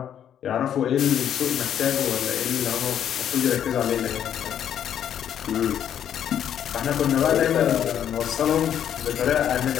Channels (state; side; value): quieter; right; 9.7 dB